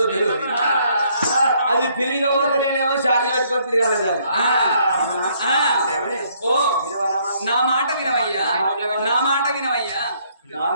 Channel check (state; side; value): inverted; both; correlation -0.67